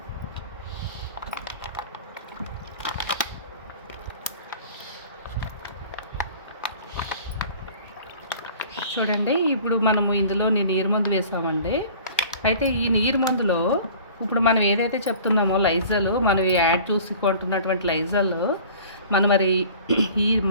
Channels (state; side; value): inverted; both; correlation -0.45